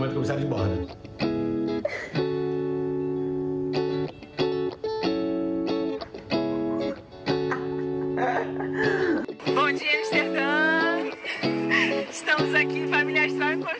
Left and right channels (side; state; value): both; identical; correlation 1.00